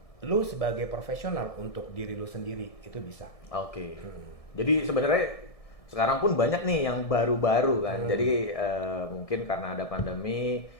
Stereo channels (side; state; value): right; late; 1.6 ms